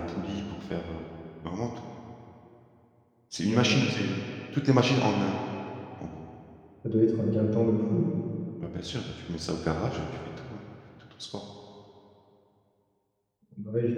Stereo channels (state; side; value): identical; both; correlation 1.00